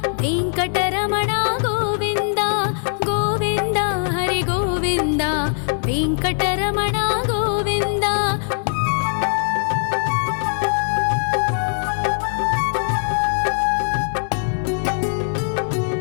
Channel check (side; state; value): right; silent; digital silence